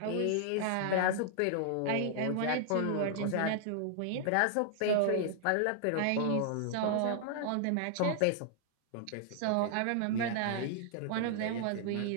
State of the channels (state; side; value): different; both; correlation 0.00